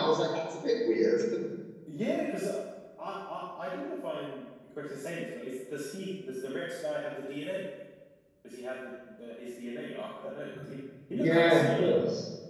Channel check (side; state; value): both; identical; correlation 1.00